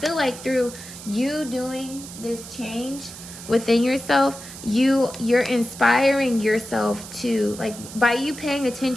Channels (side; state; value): right; noise; hiss, 14 dB below the sound